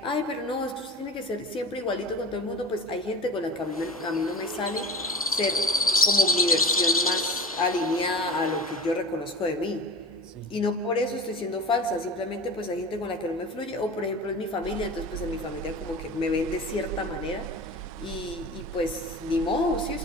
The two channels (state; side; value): normal; both; correlation 0.34